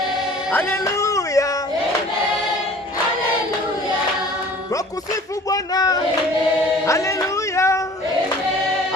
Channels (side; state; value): both; normal; correlation 0.48